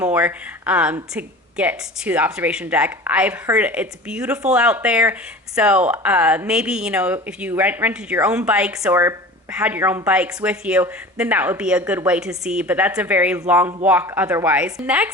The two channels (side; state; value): both; normal; correlation 0.37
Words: to get to the observation deck. I've heard it's beautiful out there, so maybe if you rented your own bikes or had your own bikes with you, then that would be a good way to see, but that's a very long walk otherwise.